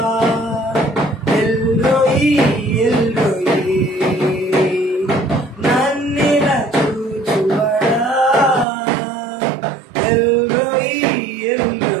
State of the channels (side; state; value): left; drops out; at 8.7 s